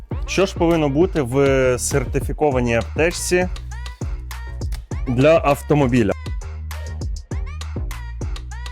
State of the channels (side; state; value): both; identical; correlation 1.00